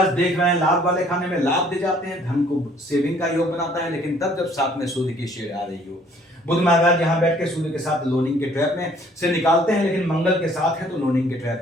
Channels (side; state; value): both; normal; correlation 0.59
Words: देख रहे हैं लाभ वाले खाने में लाभ दे जाते हैं, धन को सेविंग का योग बनाता है, लेकिन तब जब साथ में सूर्य की शेड आ रही हो। बुध महाराज यहाँ बैठ के सूर्य के साथ लोनिंग के ट्रैप में से निकालते हैं, लेकिन मंगल के साथ है तो लोनिंग के